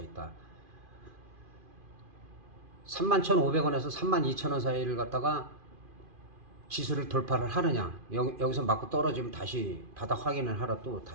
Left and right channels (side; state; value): left; late; 2.5 ms